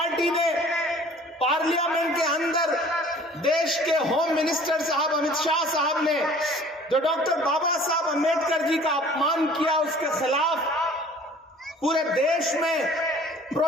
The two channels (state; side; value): normal; both; correlation 0.50